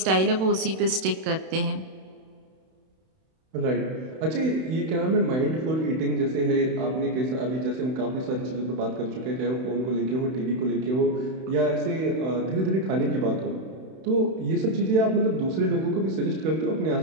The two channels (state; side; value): late; left; 31 ms